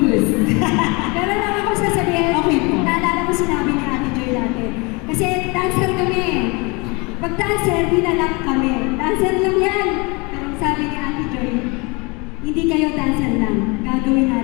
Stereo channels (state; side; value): quieter; right; 28.2 dB